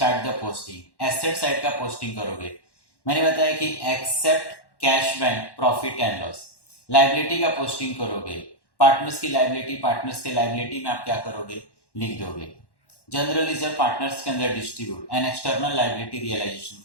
the posting, asset side का पोस्टिंग करोगे। मैंने बताया कि except cash bank profit and loss, liability का पोस्टिंग करोगे। पार्टनर्स की लायबिलिटी, पार्टनर्स के लायबिलिटी में आप क्या करोगे, लिख दोगे। जनरल रिजर्व पार्टनर्स के अंदर distribute and external liability realisation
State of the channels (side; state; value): right; late; 1.1 ms